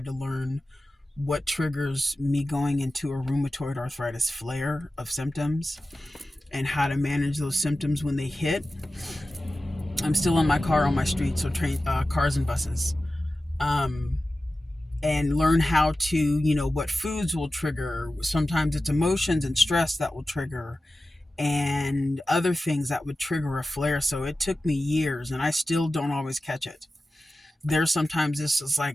to learn what triggers me going into a rheumatoid arthritis flare of symptoms and how to manage those symptoms when they hit. I'm still in my car on my street, so cars and buses. Um, and learn how to, what foods will trigger. Sometimes it's emotions and stress that will trigger, and other things that would trigger a flare. So it took me years, and I still don't always catch it. There's sometimes this is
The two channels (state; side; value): normal; both; correlation 0.94